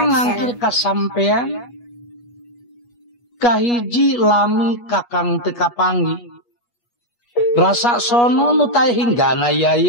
ngangkir ka sampean kahiji lami kakang teu kapanggi rasa sono nu tae hinggana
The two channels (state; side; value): late; right; 8.3 ms